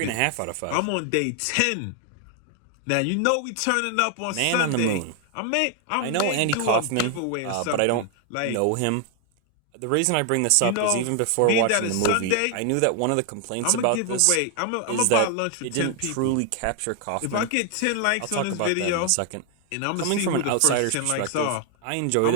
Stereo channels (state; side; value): different; both; correlation 0.00